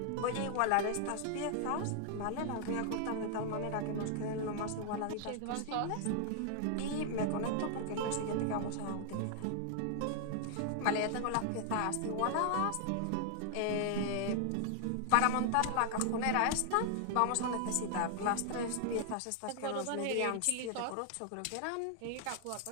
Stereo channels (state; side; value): different; both; correlation 0.00